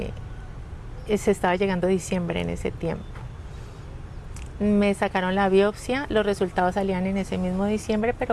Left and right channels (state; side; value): identical; both; correlation 1.00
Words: estaba llegando diciembre en ese tiempo. Me sacaron la biopsia, los resultados salían en ese mismo diciembre,